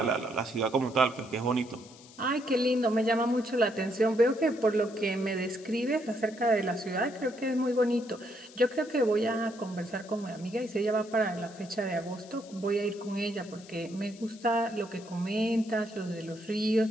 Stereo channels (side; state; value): left; noise; hiss, 21 dB below the sound